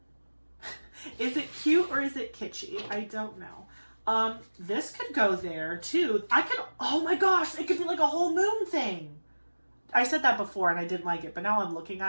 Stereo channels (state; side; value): inverted; both; correlation -1.00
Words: Is it cute or is it kitschy? I don't know. This could go there too. Oh my gosh, it could be like a whole moon thing. I said that before and I didn't like it, but now I'm looking